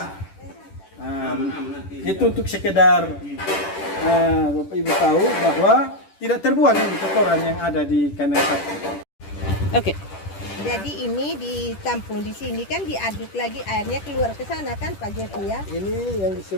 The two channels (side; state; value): right; late; 10 ms